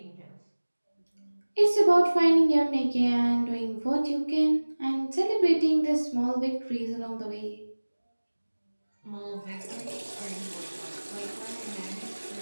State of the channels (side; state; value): both; inverted; correlation -1.00